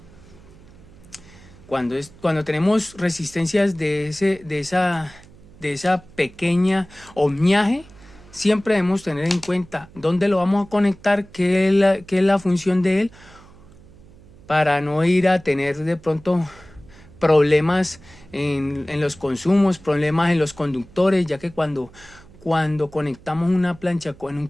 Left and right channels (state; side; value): noise; right; hum, 23 dB below the sound